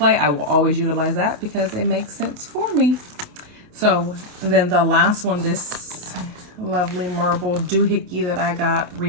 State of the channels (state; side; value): late; left; 28 ms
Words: I will always utilize that because it makes sense for me. So then the last one, this lovely marble doohickey that I got